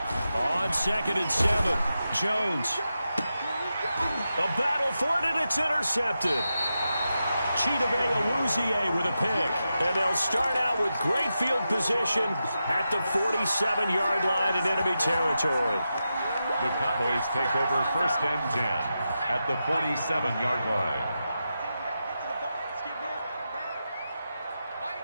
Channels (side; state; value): both; inverted; correlation -0.89